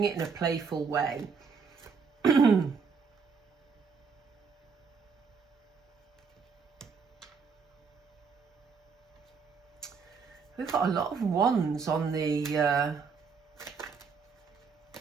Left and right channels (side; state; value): left; quieter; 5.5 dB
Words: it in a playful way. We've got a lot of wands on the